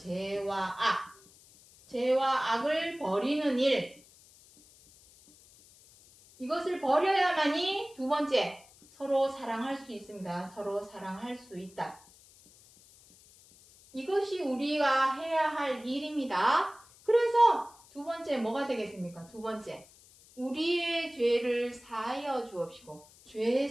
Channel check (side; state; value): left; noise; hiss, 25 dB below the sound